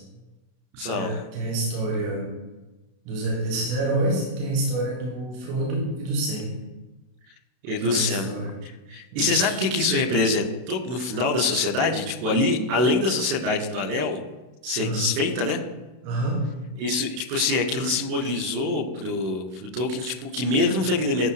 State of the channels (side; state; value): left; late; 32 ms